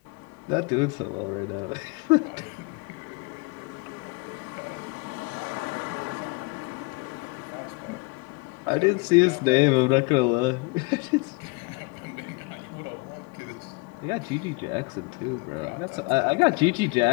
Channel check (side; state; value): right; quieter; 28.9 dB